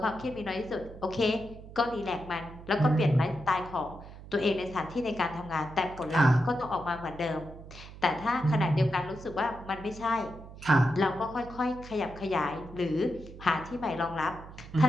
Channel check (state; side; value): noise; right; hum, 15 dB below the sound